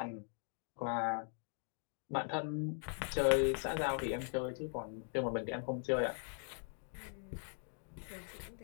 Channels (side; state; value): right; silent; 51 dB below the other